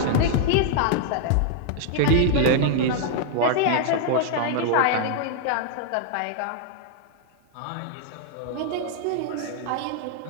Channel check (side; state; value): both; different; correlation 0.00